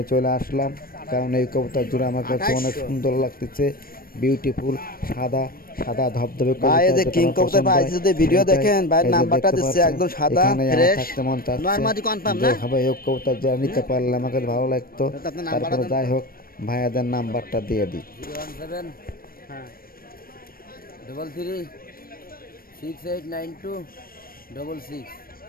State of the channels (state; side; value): late; right; 0.43 ms